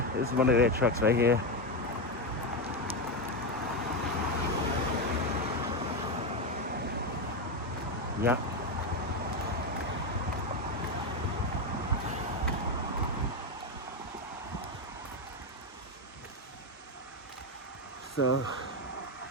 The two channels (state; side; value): normal; both; correlation 0.10